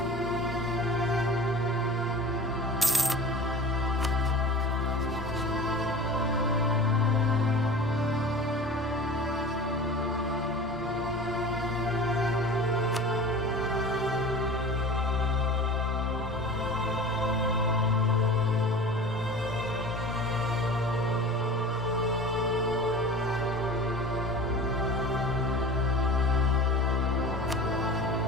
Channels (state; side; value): normal; both; correlation 0.37